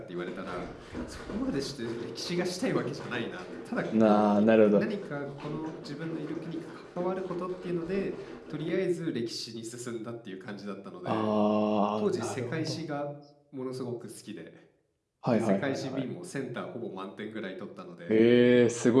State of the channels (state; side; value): identical; both; correlation 1.00